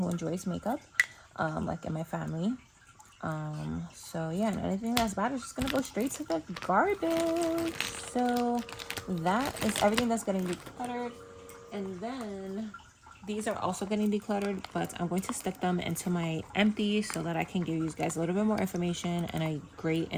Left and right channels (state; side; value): identical; both; correlation 1.00